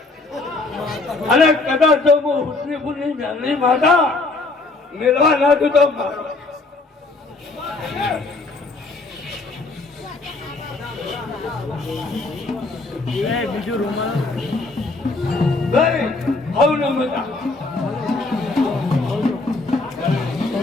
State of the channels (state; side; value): quieter; right; 3.4 dB